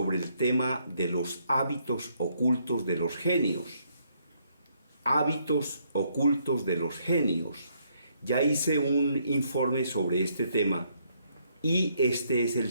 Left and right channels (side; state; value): both; inverted; correlation -0.71